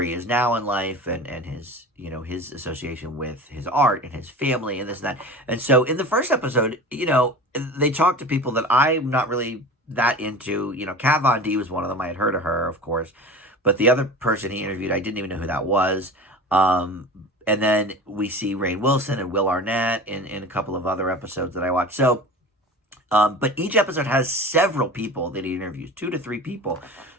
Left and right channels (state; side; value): normal; both; correlation 0.35